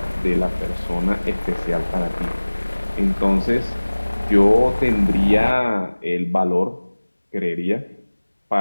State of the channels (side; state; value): both; inverted; correlation -1.00